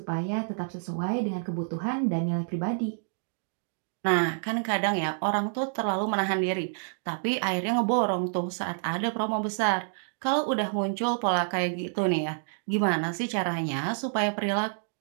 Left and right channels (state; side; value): silent; left; digital silence